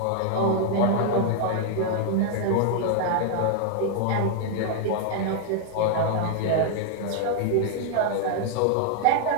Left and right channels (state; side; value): different; both; correlation 0.00